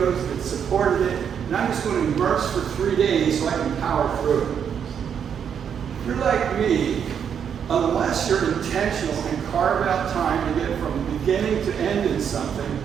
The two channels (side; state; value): left; quieter; 7.9 dB